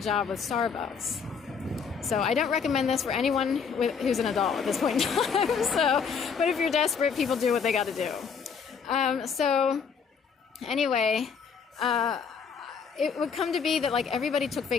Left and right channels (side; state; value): right; quieter; 6.2 dB